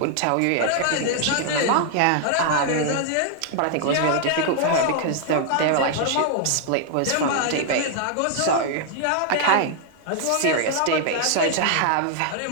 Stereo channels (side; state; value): both; different; correlation -0.01